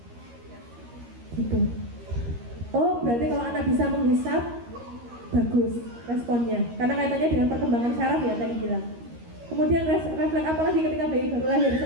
gitu. Oh, berarti kalau anak bisa menghisap, bagus responnya, karena kaitannya dengan perkembangan saraf ya tadi bilang. Kemudian refleks apa lagi ketika bayi baru lahir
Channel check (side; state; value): left; late; 13 ms